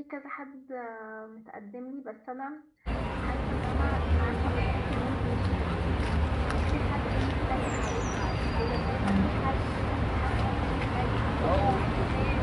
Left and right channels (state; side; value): identical; both; correlation 1.00